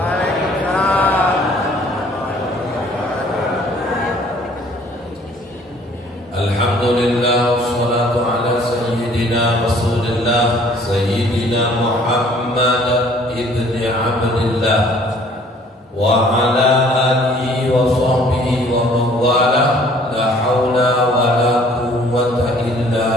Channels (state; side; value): normal; both; correlation 0.56